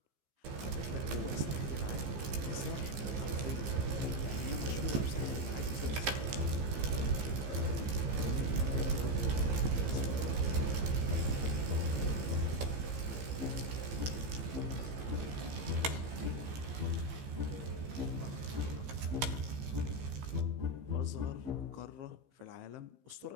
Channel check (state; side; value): late; left; 15 ms